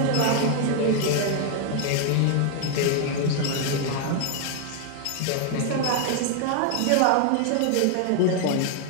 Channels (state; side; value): different; both; correlation 0.00